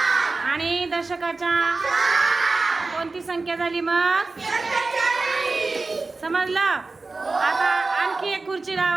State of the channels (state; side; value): quieter; left; 3.7 dB